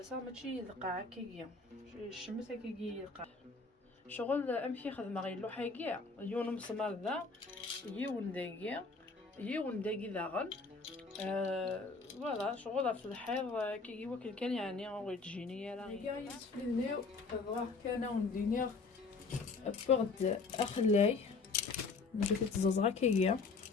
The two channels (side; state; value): right; quieter; 4.2 dB